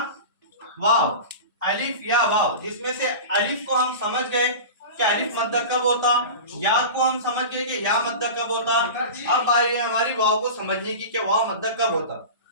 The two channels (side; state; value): both; inverted; correlation -0.31